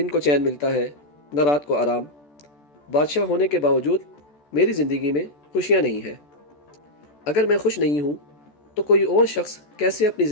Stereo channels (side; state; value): right; late; 14 ms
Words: کو چین ملتا ہے نہ رات کو آرام۔ بادشاہ ہونے کے باوجود میری زندگی میں خوشیاں نہیں ہیں۔ اگر میں خوش نہیں ہوں تو کوئی اور شخص کیسے اپنی